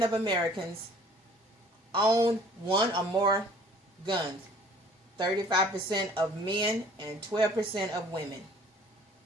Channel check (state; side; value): normal; both; correlation 0.53